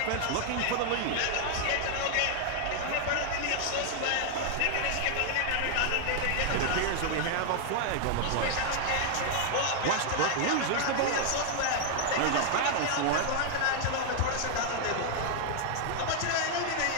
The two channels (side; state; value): both; different; correlation 0.00